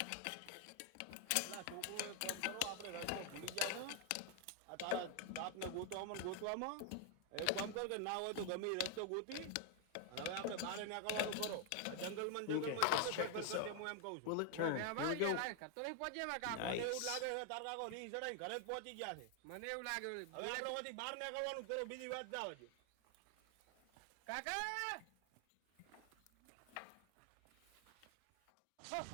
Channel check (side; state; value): both; different; correlation 0.00